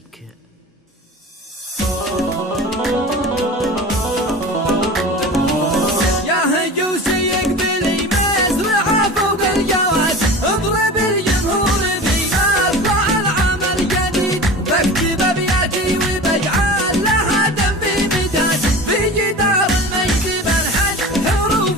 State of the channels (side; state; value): both; normal; correlation 0.35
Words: يا هجوسي يقبلي مزرعة فوق الجواز، اضرب الجمهور في مطلع العمل جديد، بكتب ابياتي وبجعل لها دم في مداد، في جدار المجد بنحت